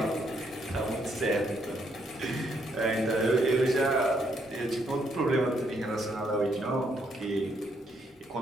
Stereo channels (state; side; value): normal; both; correlation 0.73